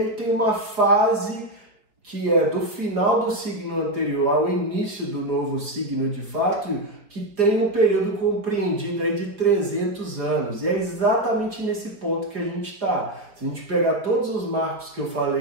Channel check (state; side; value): late; left; 4.6 ms